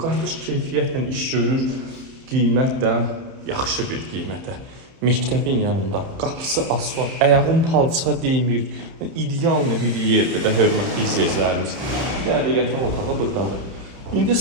qardaş keyfiyyətlə iş görür, qiymət də yaxşı bir qiymətə. Məktəbin yanında, qapısı asfalt, ayağın palça deymir, ideal bir yerdir də hörmətli izləyicilərimiz. Bir dənə də yataq otağı buradadır. İndi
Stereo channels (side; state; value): left; late; 30 ms